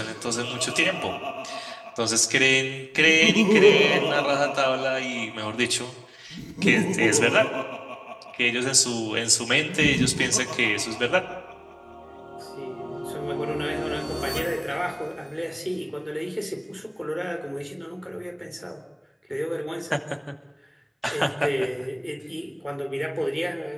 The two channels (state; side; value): identical; both; correlation 1.00